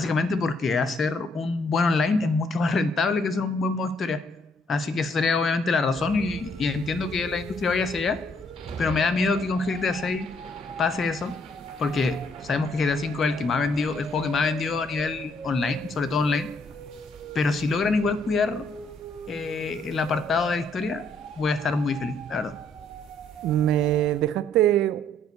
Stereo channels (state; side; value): normal; both; correlation 0.68